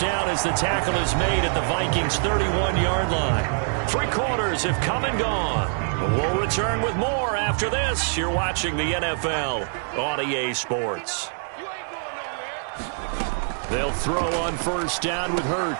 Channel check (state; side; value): silent; left; 62 dB below the other